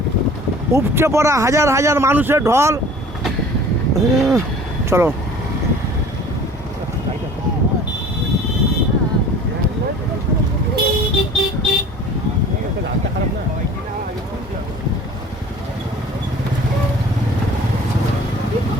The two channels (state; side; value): normal; both; correlation 0.45